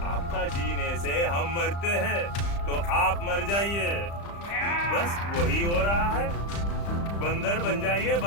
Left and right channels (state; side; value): late; right; 35 ms